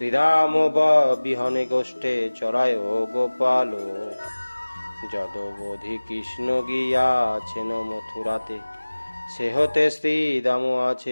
বিহনে গোষ্ঠে চরায় গোপাল। যদবধি কৃষ্ণ গিয়াছেন মথুরাতে, সে হতে শ্রীদাম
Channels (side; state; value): both; inverted; correlation -1.00